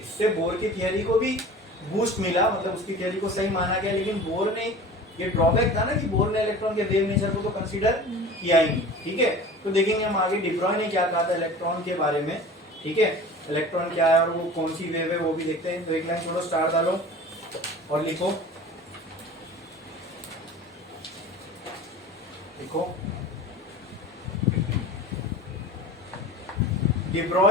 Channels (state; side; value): normal; both; correlation 0.39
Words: इससे बोर की थियरी को भी बूस्ट मिला, मतलब उसकी थियरी को सही माना गया। लेकिन बोर ने ये ड्रॉबैक था ना कि बोर ने इलेक्ट्रॉन के वेव नेचर को तो कंसीडर किया ही नहीं। ठीक है, तो देखेंगे हम आगे डिब्रॉय ने क्या कहा था इलेक्ट्रॉन के बारे में। ठीक है, इलेक्ट्रॉन क्या है और वो कौन सी वेव है वो भी देखते हैं। तो एक लाइन छोड़ो, स्टार डालो और लिखो, लिखो